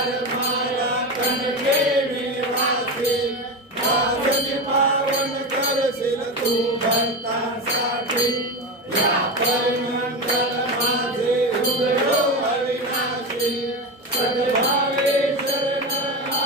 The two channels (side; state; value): both; normal; correlation 0.20